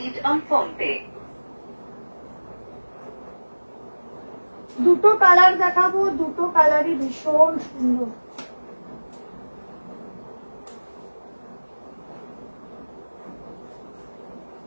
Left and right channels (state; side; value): inverted; both; correlation -1.00